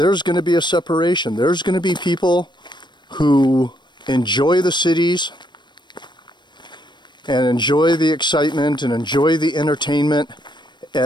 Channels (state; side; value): late; right; 0.22 ms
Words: going to be a separation. There's going to be people who enjoy the cities and enjoy the excitement and enjoy the entertainment